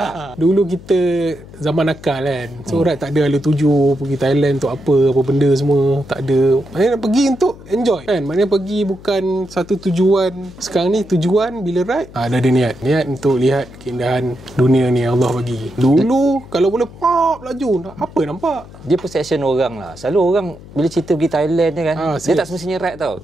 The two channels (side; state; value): left; noise; hum, 19 dB below the sound